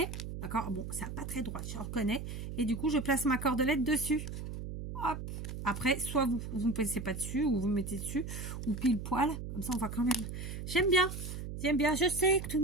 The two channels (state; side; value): noise; right; hum, 7 dB below the sound